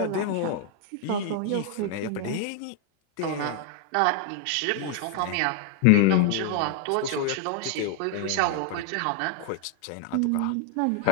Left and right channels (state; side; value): different; both; correlation 0.00